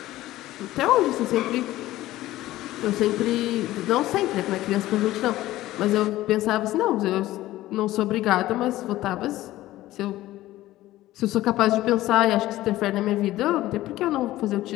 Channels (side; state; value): right; quieter; 15.9 dB